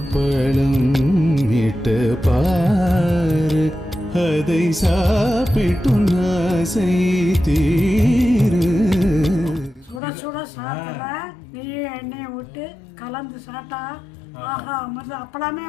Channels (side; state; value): right; drops out; at 10.0 s